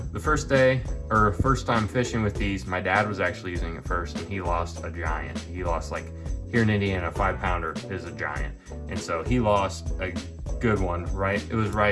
the first time fishing with these, my dad was actually using it first, and he lost a giant. He lost, like, here in Indiana, a 5-pounder is a giant. And so he lost a good one, right? It was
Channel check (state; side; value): identical; both; correlation 1.00